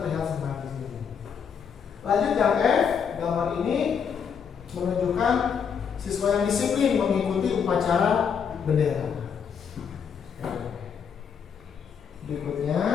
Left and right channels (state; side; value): quieter; right; 7.0 dB